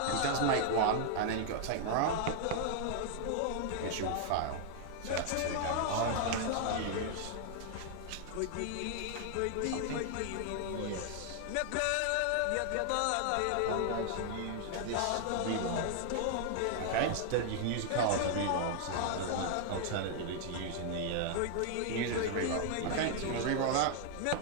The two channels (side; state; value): both; different; correlation 0.00